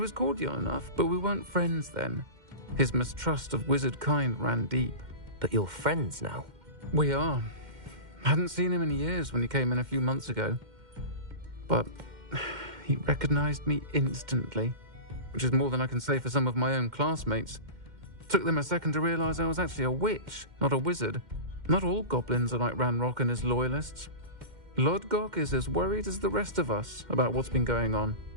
cordial enough, but we weren't friends then. His mistrust of wizard kind ran deep. But you're friends now? We are. Hadn't seen him in years when he came in a few months ago. But he recognized me instantly, which is more than I can say for some of my own classmates. Took them a second to realize I was actually a witch, not a wizard. Not all goblins are like Ranrock and his loyalists. Lodgok is as worried as the rest of us about what's been going on.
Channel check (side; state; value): left; late; 2.1 ms